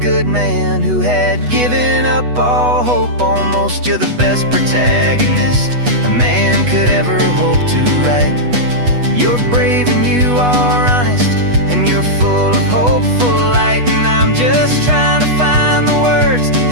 man who had given up all hope almost. You're the best protagonist a man could ever hope to write. You're brave and you are honest, and you're full of hopeful light. And I'm just trying to find the words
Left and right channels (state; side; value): late; left; 8.2 ms